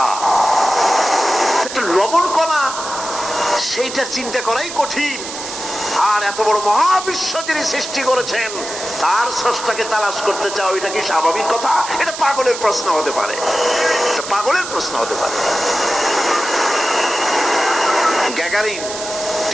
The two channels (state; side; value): noise; right; hiss, 9 dB below the sound